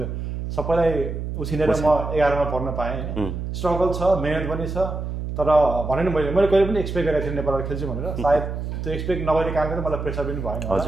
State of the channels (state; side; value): noise; right; hum, 5 dB below the sound